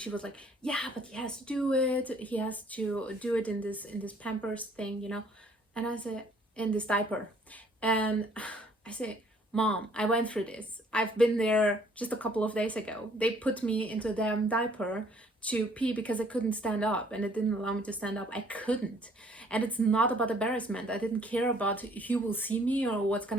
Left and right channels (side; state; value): both; normal; correlation 0.60